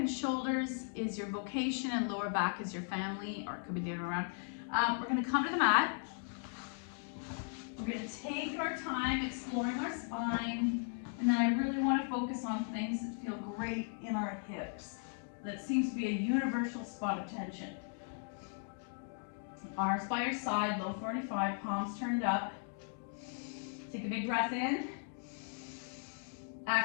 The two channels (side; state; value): right; silent; 53 dB below the other